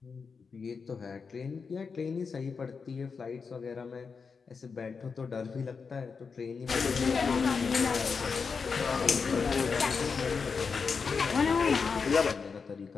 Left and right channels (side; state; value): right; quieter; 5.3 dB